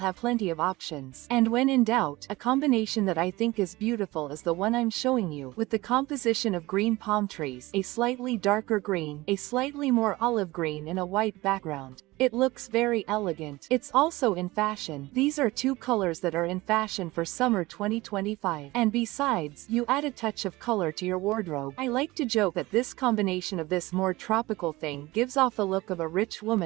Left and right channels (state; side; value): quieter; left; 20.1 dB